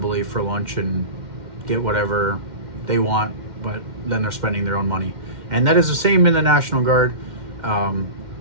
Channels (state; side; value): late; left; 2.1 ms